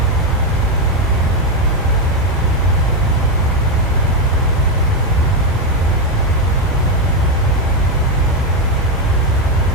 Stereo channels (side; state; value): both; normal; correlation 0.06